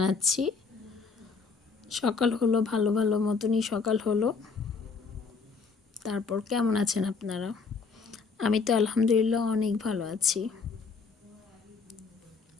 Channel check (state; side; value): quieter; right; 4.8 dB